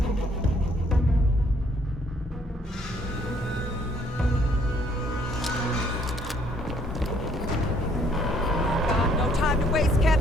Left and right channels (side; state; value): both; normal; correlation 0.65